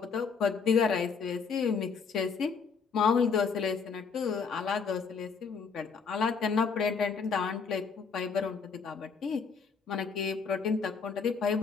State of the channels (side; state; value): right; quieter; 5.5 dB